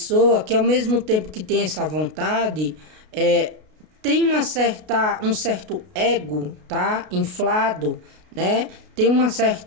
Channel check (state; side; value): late; left; 33 ms